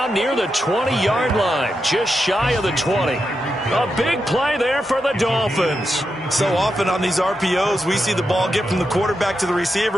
near the 20-yard line, just shy of the 20. A big play there for the Dolphins. So often on these RPOs, we see the ball get from the quarterback to the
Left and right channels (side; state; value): both; normal; correlation 0.86